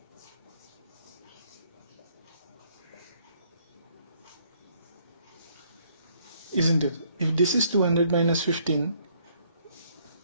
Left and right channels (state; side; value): inverted; both; correlation -0.66